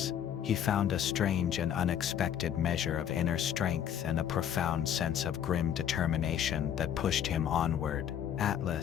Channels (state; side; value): quieter; right; 9.4 dB